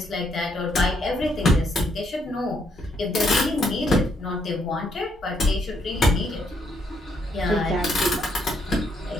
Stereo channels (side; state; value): both; normal; correlation 0.73